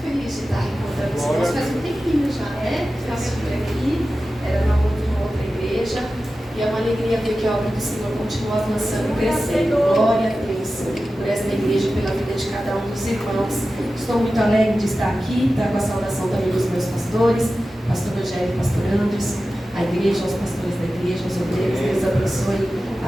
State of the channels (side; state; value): both; normal; correlation 0.94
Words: feliz de estar encontrando os irmãos. Faz um tempinho já, né? Eu estive aqui, era uma outra igreja. E é uma alegria ver que a obra do Senhor continua avançando e crescendo. Glória a Deus por esta igreja e pela vida de cada um dos irmãos. Estou muito alegre de estar aqui, com a saudação também dos meus pastores, pastor Rogério e pastor Andres, a igreja, aos pastores da igreja, aos obreiros. Deus abençoe